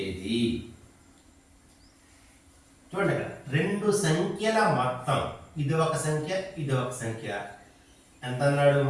ఏది? చూడండి, రెండు సంఖ్యల మొత్తం, ఇది ఒక సంఖ్య, ఇది ఒక సంఖ్య. ఎంత అన్నాడు?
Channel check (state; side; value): identical; both; correlation 1.00